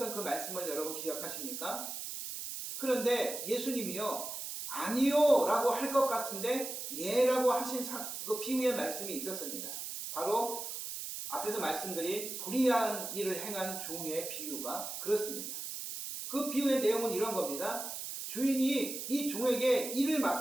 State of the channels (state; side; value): noise; right; hiss, 6 dB below the sound